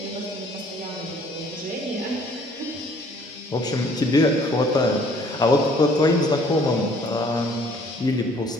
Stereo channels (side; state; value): both; normal; correlation 0.58